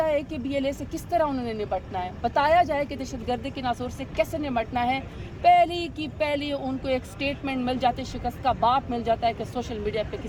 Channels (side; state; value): both; identical; correlation 1.00